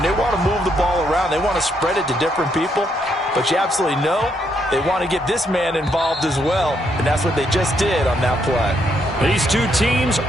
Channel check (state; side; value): normal; both; correlation 0.75